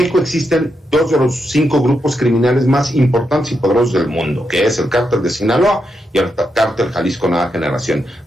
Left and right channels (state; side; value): normal; both; correlation 0.83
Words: existen 2 de los 5 grupos criminales más importantes y poderosos del mundo, que es el Cártel de Sinaloa y el Cártel Jalisco Nueva Generación,